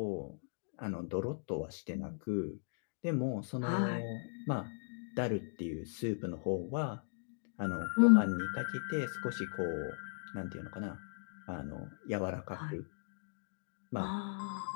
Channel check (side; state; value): right; silent; digital silence